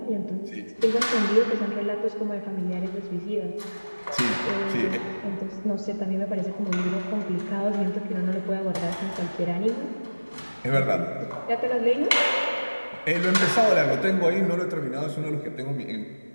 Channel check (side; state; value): both; inverted; correlation -1.00